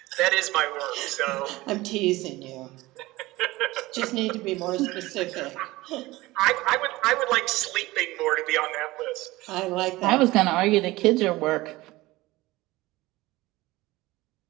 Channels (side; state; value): left; quieter; 19.4 dB